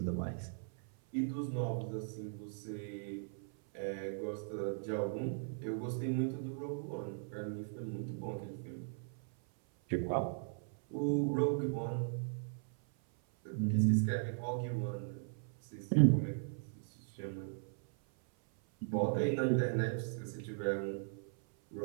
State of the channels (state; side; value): silent; left; 52 dB below the other